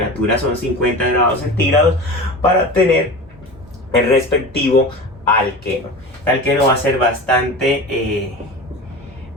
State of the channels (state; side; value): normal; both; correlation 0.31